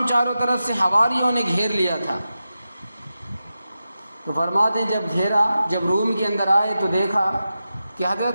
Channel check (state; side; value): inverted; both; correlation -0.91